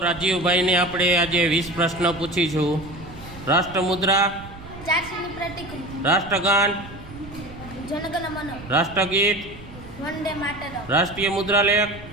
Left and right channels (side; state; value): right; noise; rumble, 16 dB below the sound